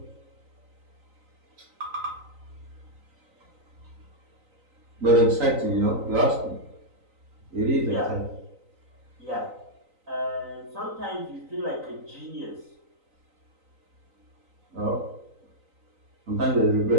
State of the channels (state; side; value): late; left; 3.9 ms